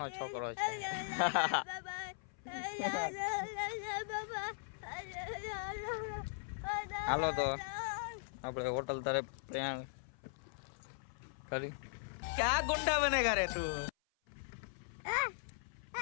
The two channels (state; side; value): silent; right; 52 dB below the other